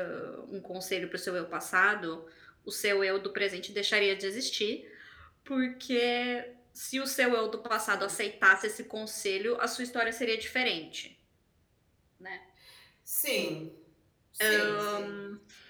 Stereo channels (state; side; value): identical; both; correlation 1.00